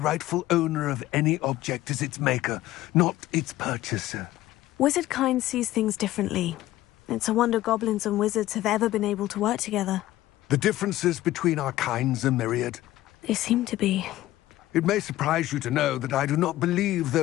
owner of any object is its maker, not its purchaser. Wizard kind sees things differently. It's a wonder goblins and wizards have ever been able to work together. The differences between our kinds are myriad. They seem to be. It may surprise you to know that I do not believe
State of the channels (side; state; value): right; quieter; 15.5 dB